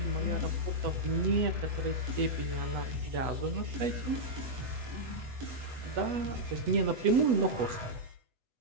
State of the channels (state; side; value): late; left; 8.1 ms